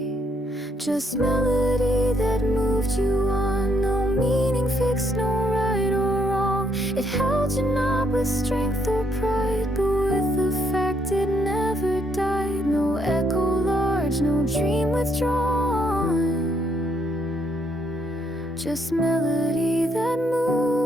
Just melody that moved you on. No meaning fixed, no right or wrong. It held you not with strength or pride, but with the fact it never died. No echo large, no dream withdrawn. Just melody that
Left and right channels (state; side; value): normal; both; correlation 0.72